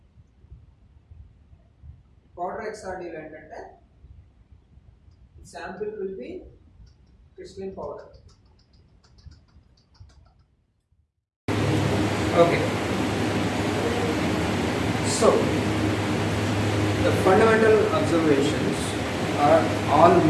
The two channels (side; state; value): both; identical; correlation 1.00